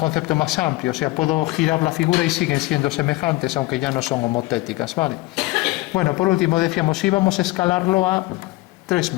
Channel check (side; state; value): right; quieter; 20.4 dB